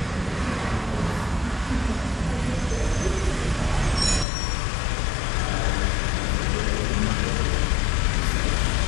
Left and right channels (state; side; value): drops out; right; at 4.2 s